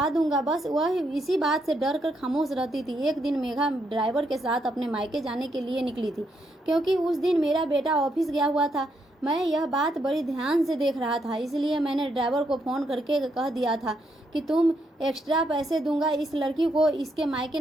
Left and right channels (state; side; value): normal; both; correlation 0.77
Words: दूंगा। बस वह इसी बात से डर कर खामोश रहती थी। एक दिन मेघा ड्राइवर के साथ अपने मायके जाने के लिए निकली थी, क्योंकि उस दिन मेरा बेटा ऑफिस गया हुआ था। मैं यह बात बड़ी ध्यान से देख रहा था, इसलिए मैंने ड्राइवर को फ़ोन करके कह दिया था कि तुम एक्स्ट्रा पैसे दूंगा इस लड़की को इसके मायके